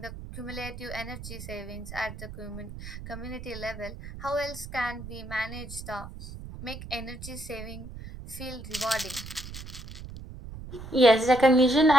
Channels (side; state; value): right; noise; rumble, 12 dB below the sound